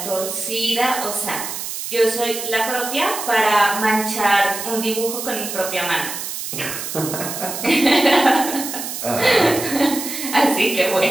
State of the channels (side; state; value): right; noise; hiss, 6 dB below the sound